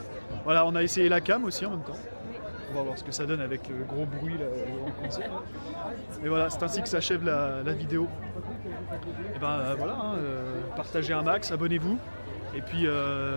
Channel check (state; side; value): inverted; both; correlation -1.00